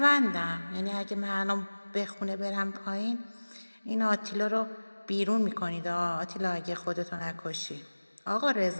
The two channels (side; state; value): both; inverted; correlation -1.00